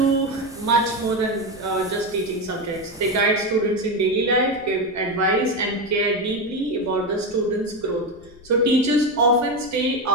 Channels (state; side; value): noise; left; rumble, 24 dB below the sound